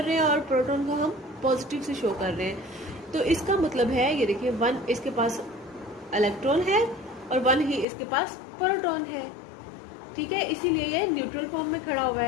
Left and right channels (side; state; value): right; drops out; at 7.9 s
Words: रहे हैं और प्रोटॉन को हम पॉजिटिव से शो कर रहे हैं. तो इसका मतलब है, ये देखिए, वन इसके पास इलेक्ट्रॉन है और वन ही इसके पास प्रोटॉन है. ठीक है, इसीलिए ये न्यूट्रल फॉर्म में खड़ा हुआ